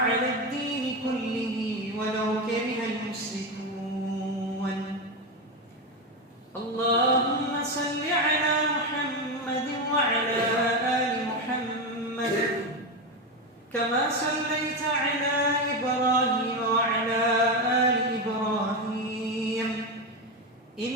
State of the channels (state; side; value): normal; both; correlation 0.14